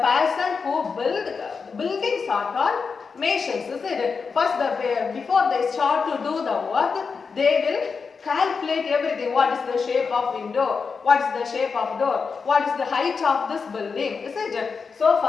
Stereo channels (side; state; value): right; quieter; 5.2 dB